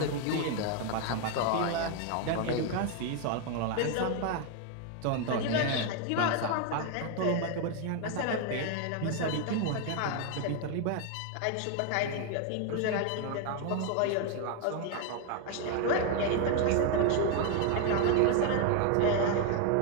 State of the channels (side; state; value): both; different; correlation 0.01